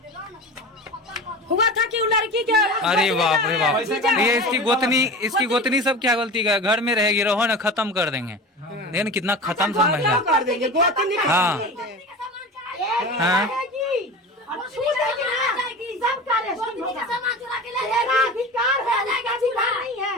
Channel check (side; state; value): both; normal; correlation 0.31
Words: हुआ था कि वो लड़की के अरे बाप रे बाप, ये इसकी गोतनी सब क्या गलती का, घर में रहेगी, रहो ना, खत्म कर देंगे। देखिए कितना खत्म सब महिला। कर देंगे गोतनी हाँ हाँ